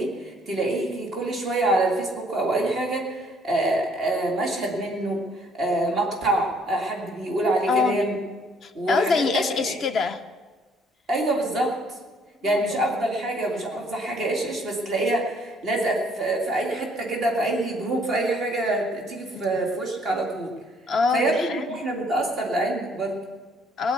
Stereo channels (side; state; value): both; normal; correlation 0.63